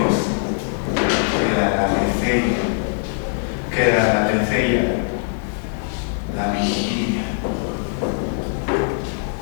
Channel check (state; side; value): silent; right; digital silence